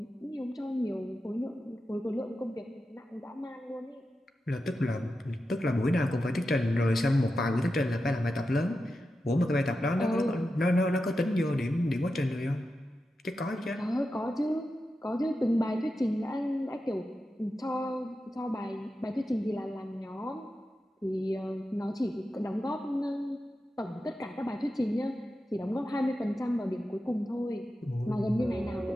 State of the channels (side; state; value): both; normal; correlation 0.90